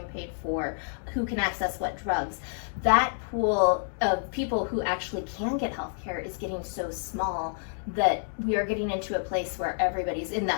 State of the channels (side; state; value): right; silent; digital silence